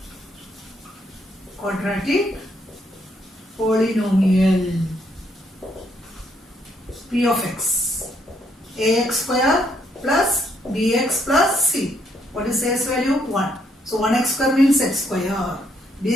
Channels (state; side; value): normal; both; correlation 0.72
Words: Quadratic polynomial. P of x. Ax square plus bx plus c. What is a's value? 1. So 1x square means x square.